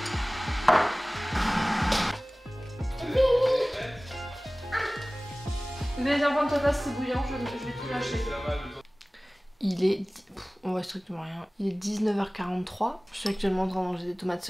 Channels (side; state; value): both; normal; correlation 0.98